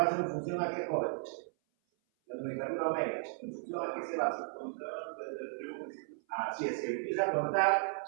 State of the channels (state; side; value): silent; left; 54 dB below the other